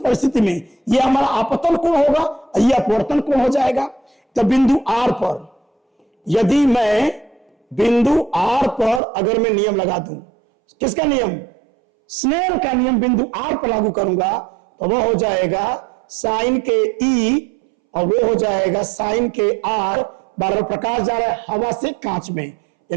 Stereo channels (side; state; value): left; drops out; at 9.0 s